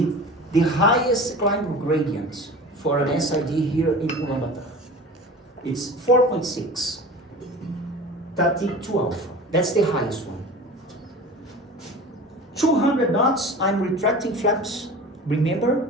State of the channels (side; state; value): both; normal; correlation 0.37